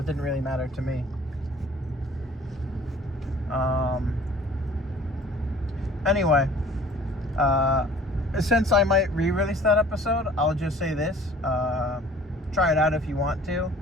didn't really matter to me. Anyway, since I might re-release that episode, I'll just say this. Try it out if you want to,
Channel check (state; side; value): normal; both; correlation 0.50